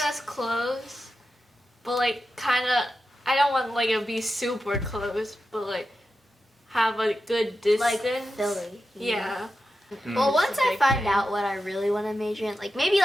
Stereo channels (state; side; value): normal; both; correlation 0.90